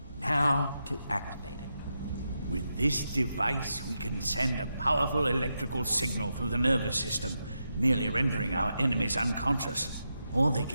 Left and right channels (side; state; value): both; inverted; correlation -0.86